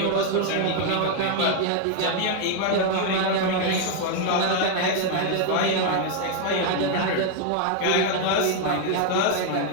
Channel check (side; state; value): both; different; correlation 0.00